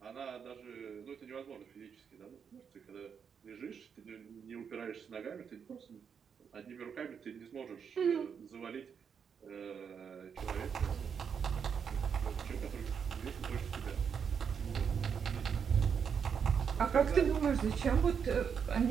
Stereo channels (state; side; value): quieter; left; 6.9 dB